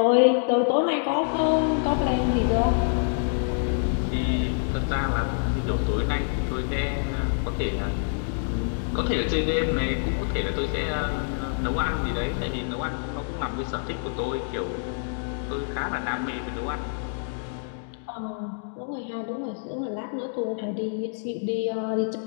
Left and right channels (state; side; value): silent; right; digital silence